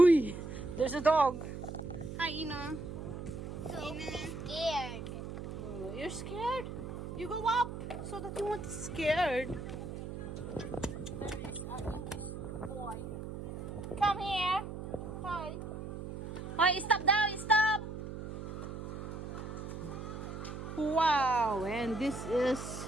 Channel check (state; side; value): noise; right; hum, 8 dB below the sound